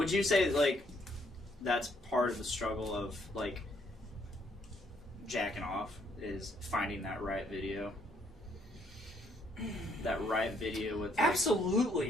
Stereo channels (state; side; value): normal; both; correlation 0.69